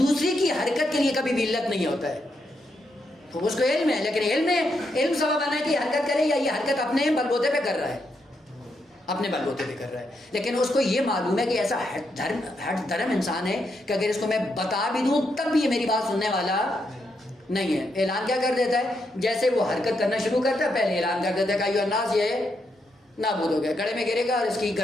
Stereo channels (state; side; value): normal; both; correlation 0.80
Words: کی حرکت کے لیے کبھی بھی علت نہیں ہوتا ہے، تو اس کو علم ہے، لیکن علم سبب بنا ہے کہ یہ حرکت کرے یا یہ حرکت اپنے بل بوتے پہ کر رہا ہے۔ اپنے بل بوتے پہ کر رہا ہے، لیکن اس کو یہ معلوم ہے کہ ایسا ہٹ دھرم انسان ہے کہ اگر اس کو میں بتا بھی دوں تب بھی یہ میری بات سننے والا نہیں ہے۔ اعلان کیا کر دیتا ہے؟ جیسے وہ حرکت کرنا شروع کرتا ہے پہلے اعلان کر دیتا ہے کہ ایھا الناس، یہ نابود ہو گیا، گڑھے میں گرے گا اور اس کی